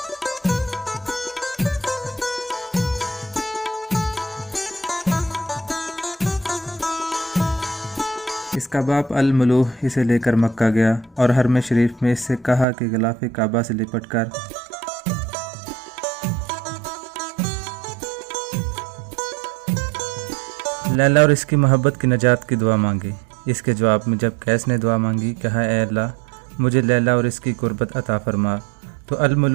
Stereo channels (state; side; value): drops out; left; at 12.7 s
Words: इसका बाप अल-मलूह इसे लेकर मक्का गया और हरम शरीफ में इससे कहा कि गिलाफ़े काबा से लिपट कर लैला और इसकी मोहब्बत की नजात की दुआ मांगी। इसके जवाब में जब कैस ने दुआ मांगी, कहा, ऐ अल्लाह, मुझे लैला और इसकी कुर्बत अता फरमा, तो